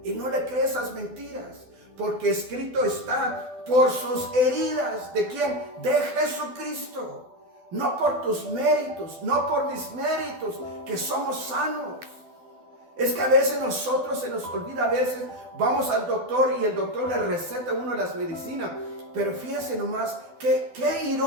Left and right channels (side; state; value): left; late; 12 ms